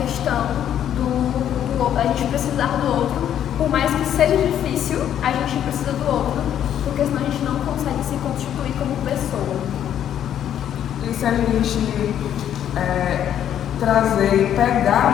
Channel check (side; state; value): right; quieter; 10.2 dB